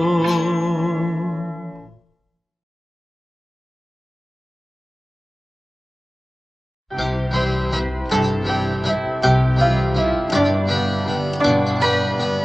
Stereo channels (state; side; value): normal; both; correlation 0.97